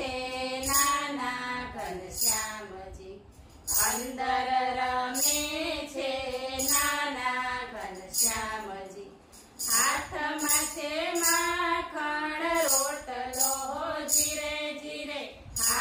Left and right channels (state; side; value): identical; both; correlation 1.00